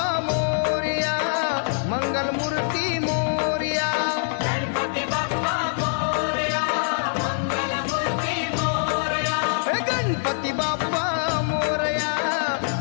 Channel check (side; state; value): right; silent; digital silence